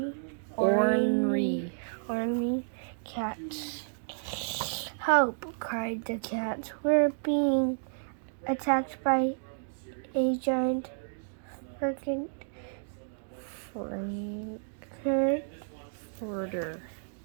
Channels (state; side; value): silent; left; digital silence